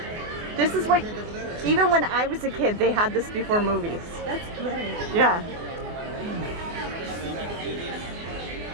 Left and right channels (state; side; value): late; left; 24 ms